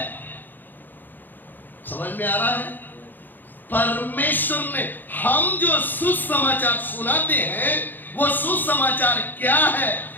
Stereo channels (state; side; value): late; right; 0.088 ms